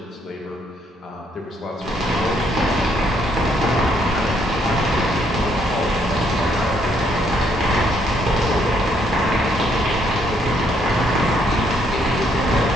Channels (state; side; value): normal; both; correlation 0.70